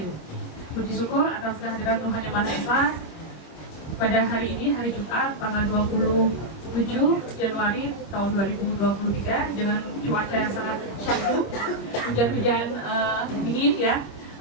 Puji syukur atas kehadiran Tuhan Yang Maha Esa pada hari ini, hari Jumat, tanggal 27 Januari tahun 2023 dengan cuaca yang sangat syahdu, hujan-hujan dingin ya.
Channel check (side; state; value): right; late; 25 ms